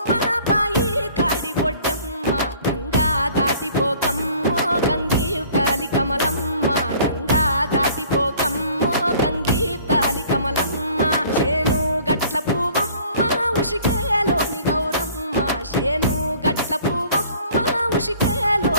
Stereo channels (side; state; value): both; inverted; correlation -0.52